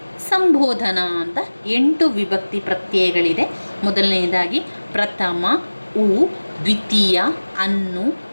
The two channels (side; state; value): both; inverted; correlation -1.00